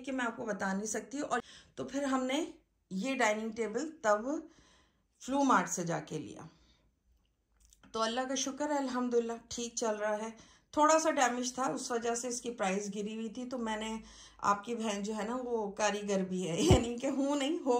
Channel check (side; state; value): both; identical; correlation 1.00